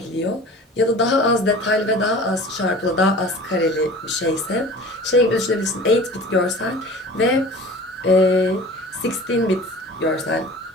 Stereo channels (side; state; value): both; normal; correlation 0.41